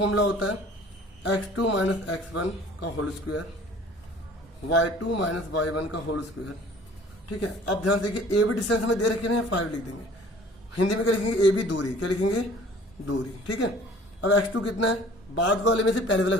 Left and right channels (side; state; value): both; normal; correlation 0.50